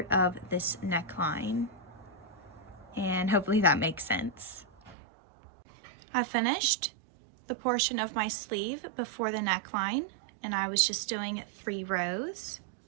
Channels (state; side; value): drops out; left; at 5.0 s